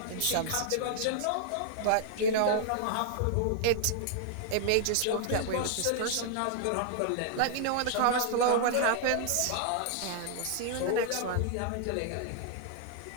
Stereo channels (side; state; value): both; different; correlation -0.01